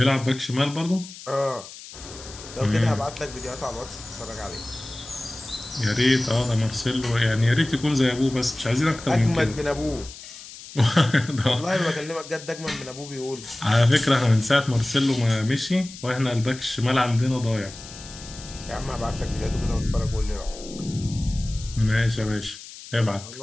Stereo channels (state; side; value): noise; left; hiss, 15 dB below the sound